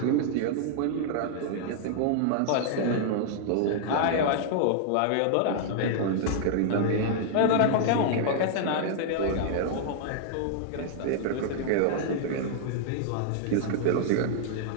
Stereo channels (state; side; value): different; both; correlation -0.01